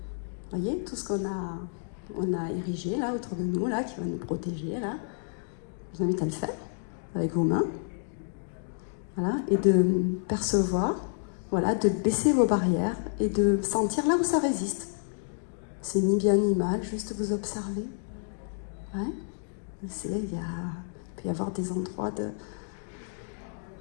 Vous voyez, tout ce qu'on a érigé, là, autour de nous, là, qui va nous protéger, là. Je vous invite à le faire, avec vos mains. Voilà, et de percevoir, voilà, de baisser vos barrières et de sentir là où ça résiste. C'est ni bien ni mal, juste vous observez. Ouais. Il peut y avoir des endroits de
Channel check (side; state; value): right; silent; digital silence